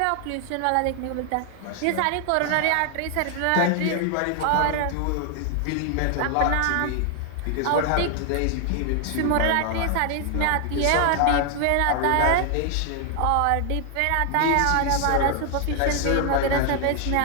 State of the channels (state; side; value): different; both; correlation 0.00